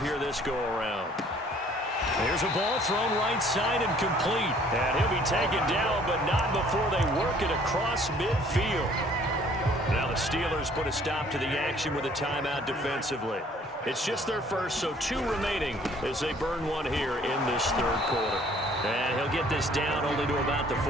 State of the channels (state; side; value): normal; both; correlation 0.57